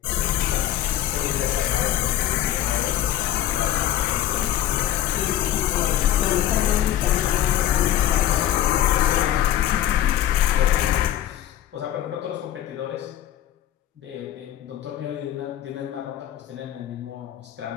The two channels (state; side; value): quieter; right; 12.2 dB